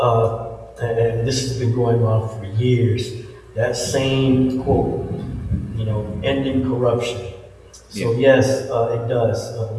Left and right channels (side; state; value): both; identical; correlation 1.00